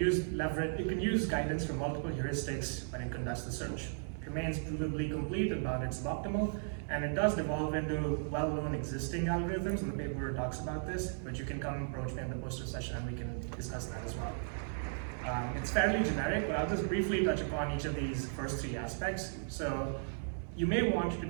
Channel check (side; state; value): left; silent; 54 dB below the other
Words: guidance from multiple heuristics when it conducts the search. It remains provably complete about its suboptimal, and it does devolve into well-known existing algorithms, and the paper talks about this, but you can come approach me in the poster session and we can discuss that as well. It's fairly generic, but I'll just briefly touch upon each of these first three aspects. So you may want to